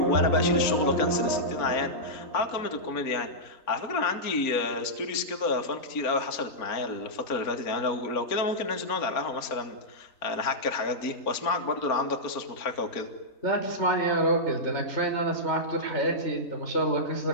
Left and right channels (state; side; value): late; right; 4.3 ms